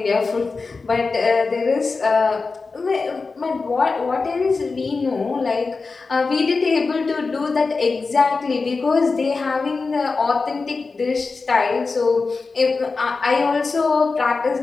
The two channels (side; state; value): right; quieter; 4.2 dB